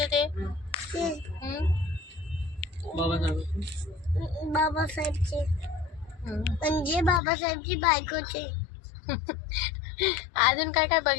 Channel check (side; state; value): right; drops out; at 7.2 s